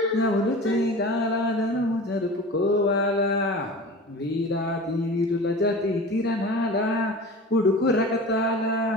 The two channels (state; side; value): normal; both; correlation 0.36